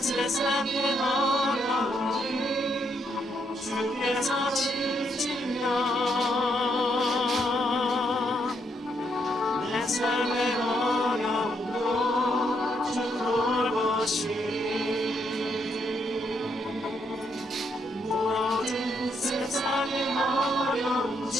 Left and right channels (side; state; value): both; normal; correlation 0.76